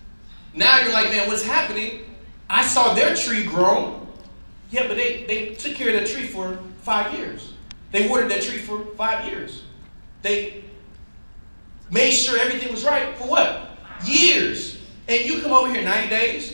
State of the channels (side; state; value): both; inverted; correlation -1.00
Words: Now you're like, man, what's happening? I saw their tree grow. Yeah, but they took care of that tree for 5 years. They watered that tree for 5 years. They made sure everything was right for what? Years. And you come over here 90 days,